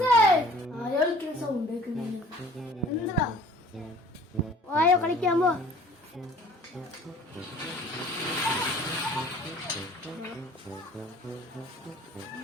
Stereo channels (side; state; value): both; normal; correlation 0.51